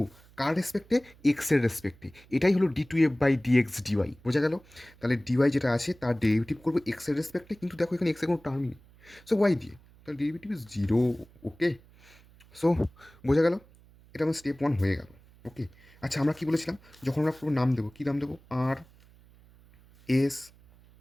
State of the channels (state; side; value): noise; right; hum, 26 dB below the sound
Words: কার রেসপেক্টে, এক্সের রেসপেক্টে। এটাই হলো d two F by dx dy, বোঝা গেল। তাহলে ডিওয়াই যেটা আছে তার ডেরিভেটিভ করবো এক্সের রেসপেক্টে, কিন্তু দেখো এখানে এক্সের কোনো টার্মই নেই, সো ওয়াই দিয়ে, তাহলে ডেরিভেটিভ ইজ 0। ওকে, সো বোঝা গেল, এটা আমার স্টেপ 1 হয়ে গেল। ওকে, আচ্ছা আমরা কী বলেছিলাম, যখন আমরা পুরো নাম দেবো, কী নাম দেবো, আর এস